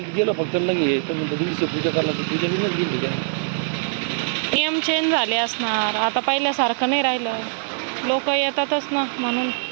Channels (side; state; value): left; silent; 64 dB below the other